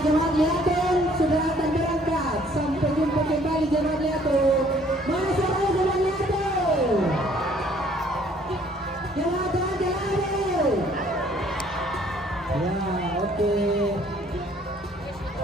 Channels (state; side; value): normal; both; correlation 0.60